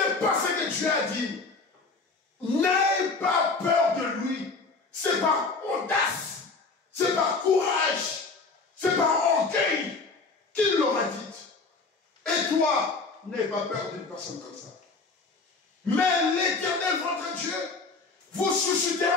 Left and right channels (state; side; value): quieter; right; 4.0 dB